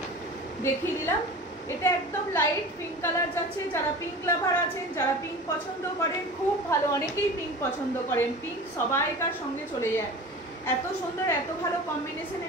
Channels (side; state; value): both; normal; correlation 0.36